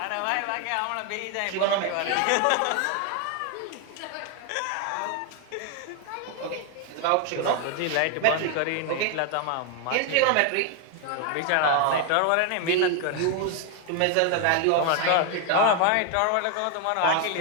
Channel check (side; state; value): both; different; correlation 0.00